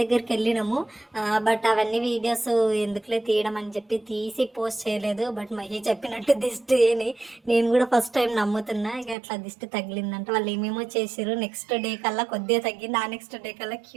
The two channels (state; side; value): drops out; left; at 9.2 s